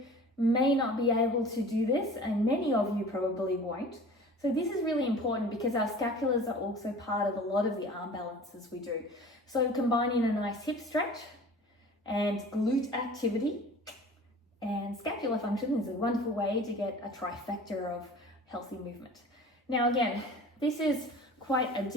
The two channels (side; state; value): both; normal; correlation 0.43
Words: may not be able to do this, and many of you probably won't. So this is really important because our scapulars are also part of a lot of the arm balances we do. So combining a nice hip stretch and glute activity and scapular function is a wonderful way to get a trifecta of healthy movement. Now again, this is quite a